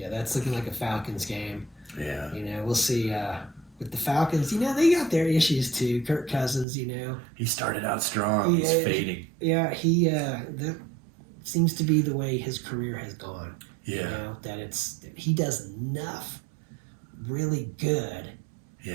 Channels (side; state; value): left; drops out; at 6.7 s